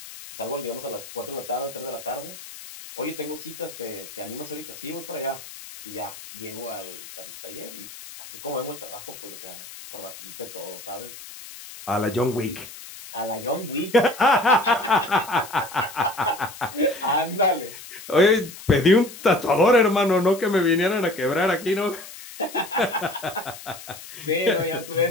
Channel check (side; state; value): left; noise; hiss, 15 dB below the sound